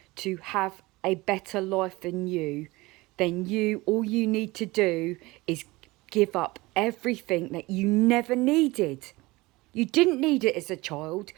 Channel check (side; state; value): left; quieter; 21.5 dB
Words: to have a better life than you, then all you need to do is give up everything that you never needed. You didn't need it as a child.